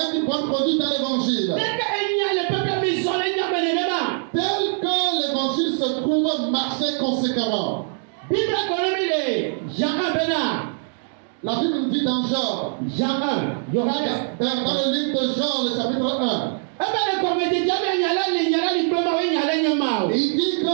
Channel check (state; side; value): silent; left; 64 dB below the other